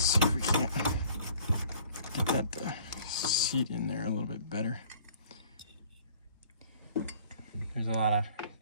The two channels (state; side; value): inverted; both; correlation -0.54